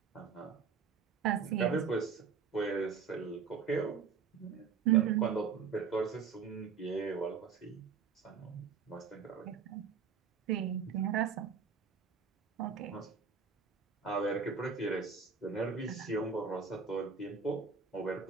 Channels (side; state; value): left; quieter; 6.1 dB